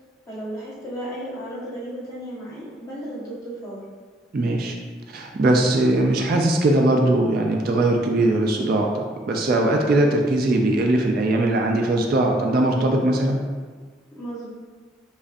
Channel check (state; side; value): normal; both; correlation 0.65